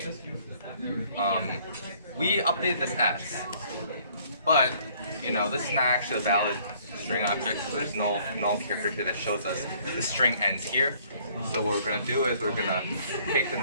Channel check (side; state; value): both; inverted; correlation -0.60